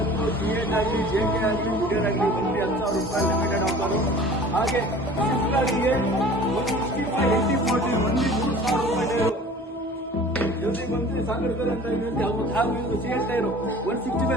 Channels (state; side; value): normal; both; correlation 0.44